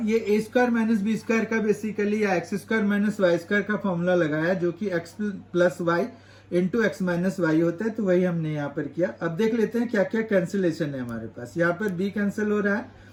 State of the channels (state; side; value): identical; both; correlation 1.00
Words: ये a square minus b square का बेसिकली या x square minus y square का फॉर्मूला लगाया, जो कि x plus y into x minus y होता है, तो वही हमने यहाँ पर किया। अब देख लेते हैं क्या क्या कैंसिलेशन है हमारे पास। यहाँ पर बी कैंसिल हो रहा है